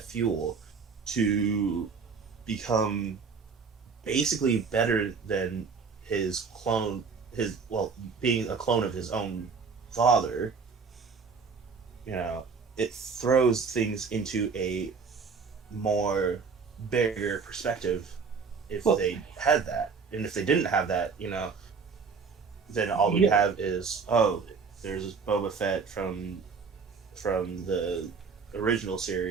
fuel to become basically better than his clone, being a clone of his own father, it throws things into a more bigger perspective if they had that. And if they didn't have that, then all we have is, there's Boba Fett from the original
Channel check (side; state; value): left; quieter; 5.3 dB